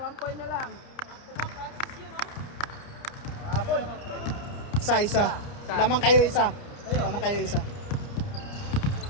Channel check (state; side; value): late; right; 29 ms